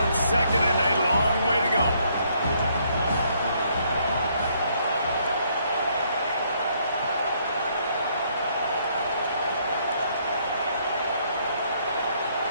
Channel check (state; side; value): inverted; both; correlation -0.69